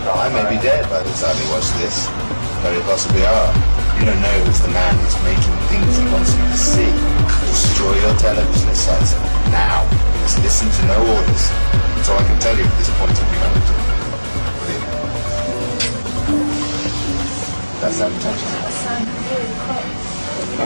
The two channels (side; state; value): both; inverted; correlation -1.00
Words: I may be dead by the time you watch this. Very possibly are. You don't know who's the man who's making things he wants you to see. Destroy your television sets now. Just listen to no orders. That's all I can tell you at this point of humanity. That's that potential.